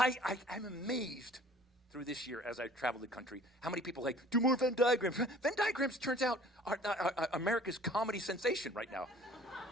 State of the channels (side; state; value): both; normal; correlation 0.50